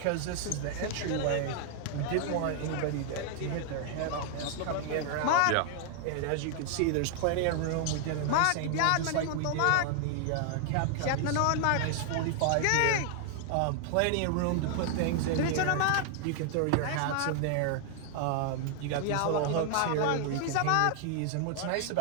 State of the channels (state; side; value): different; both; correlation 0.00